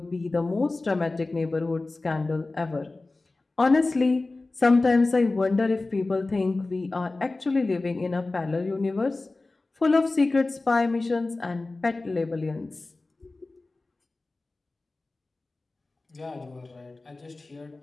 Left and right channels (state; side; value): quieter; right; 3.3 dB